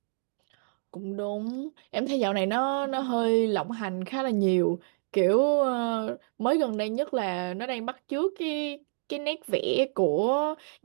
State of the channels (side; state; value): left; silent; digital silence